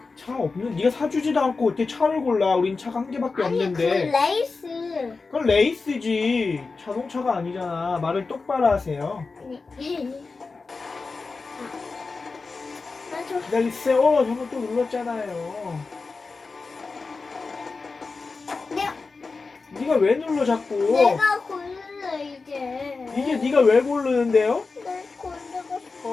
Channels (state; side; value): quieter; right; 4.1 dB